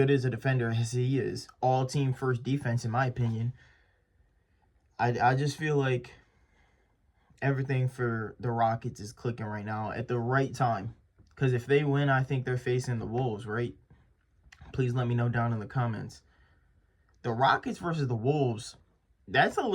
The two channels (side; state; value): both; identical; correlation 1.00